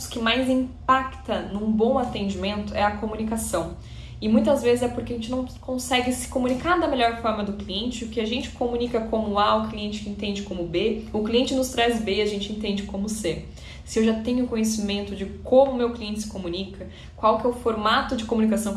que mais impacta num bom atendimento é a comunicação. E muitas vezes é porque a gente não consegue se comunicar da melhor forma do cliente. O que a gente comunica como A, o cliente entende como B. O cliente nos traz B, a gente entende como C. Se eu já tenho conhecimento de como o meu cliente se comunica, qual que é o formato de comunicação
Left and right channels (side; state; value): both; identical; correlation 1.00